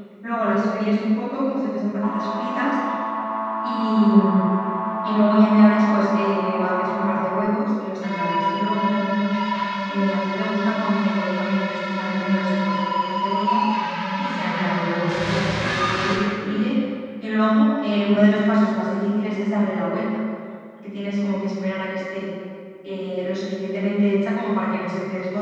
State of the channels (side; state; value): both; identical; correlation 1.00